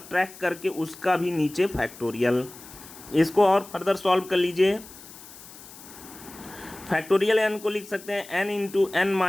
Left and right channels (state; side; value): noise; left; hiss, 18 dB below the sound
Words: करके उसका भी नीचे फैक्टोरियल। इसको और फर्दर सॉल्व कर लीजिए। फैक्टोरियल n को लिख सकते हैं n इंटू n -